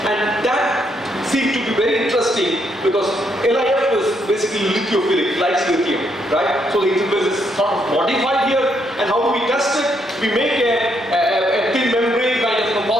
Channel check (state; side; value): normal; both; correlation 0.75